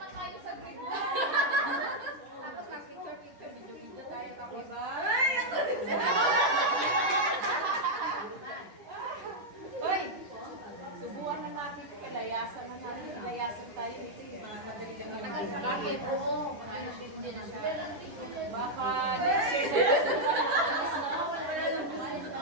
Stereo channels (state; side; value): late; left; 10 ms